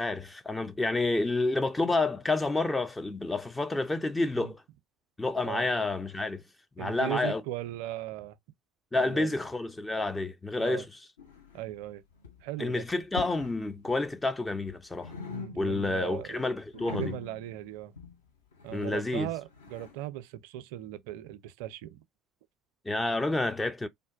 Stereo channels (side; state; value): both; normal; correlation 0.81